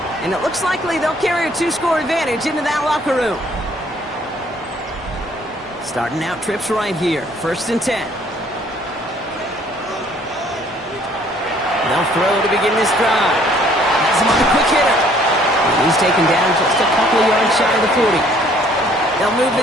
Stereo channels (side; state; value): both; normal; correlation 0.60